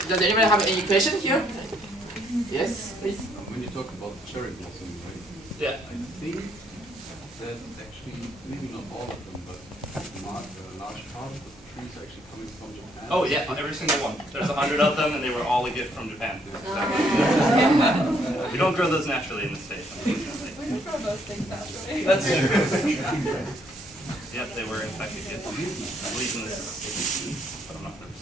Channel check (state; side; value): normal; both; correlation 0.69